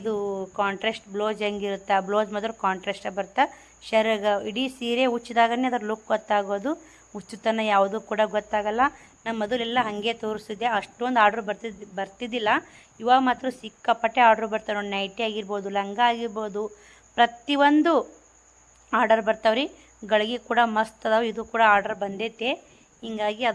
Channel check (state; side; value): identical; both; correlation 1.00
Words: ಕಾಂಟ್ರಾಸ್ಟ್ ಬ್ಲೌಸ್ ಹೆಂಗಿರುತ್ತೆ, ಆ ಬ್ಲೌಸ್ ಮಾತ್ರ ಕಾಂಟ್ರಾಸ್ಟಾಗಿ ಬರ್ತಾ. ಶೆರಗ ಇಡೀ ಸೀರೆ ಉಚ್ಚಿದಾಗನೇ ಅದ್ರ ಲುಕ್ ಗೊತ್ತಾಗೋದು. ಉಚ್ಚುತನ ಯಾವುದೂ ಕೂಡ ಗೊತ್ತಾಗಲ್ಲ. ನಾನು ಮೊದಲೆಲ್ಲ ಹಾಗೆ ತೋರಿಸಿದ್ದೆ, ಅಷ್ಟೊಂದು ಆರ್ಡ್ರ್ ಬರ್ತಿದ್ದಿಲ್ಲ. ಇವಾಗ ಮಾತ್ರ ಸಿಕ್ಕಾಪಟ್ಟೆ ಆರ್ಡ್ರ್ ಬರ್ತಾವೆ ನೋಡಿ. ನೈಟಿ ಆಗಿರ್ಬೋದು, ಲಂಗ ಆಗಿರ್ಬೋದು, ಪ್ರತಿಯೊಂದು ಆರ್ಡರ್ ಬರ್ತಾವ್ರಿ. ಗಳಿಗೆ ಕೂಡ ಮಸ್ತ್ ಅದಾವೆ. ಇದು ಕೂಡ ಆರ್ಡರ್ ಬಂದೈತೆ, ಹಿಂಗಾಗಿ